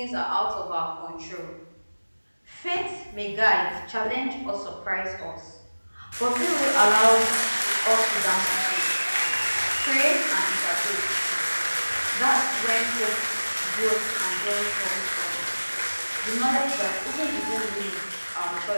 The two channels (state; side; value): inverted; both; correlation -1.00